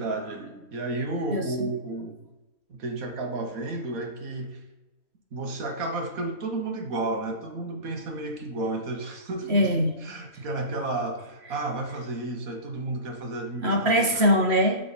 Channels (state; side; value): late; left; 3.1 ms